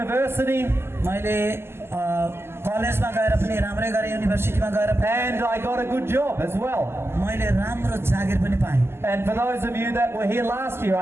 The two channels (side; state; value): left; late; 0.12 ms